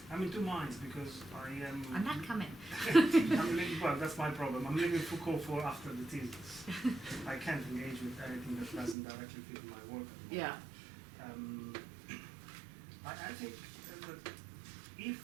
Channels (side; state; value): left; drops out; at 9.0 s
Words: I'm in two minds because I am. I'm not coming. Well, that's my problem. I'm leaving Foucault for after the thesis. I can't engage with anything that doesn't directly fit my work. Yeah. I think that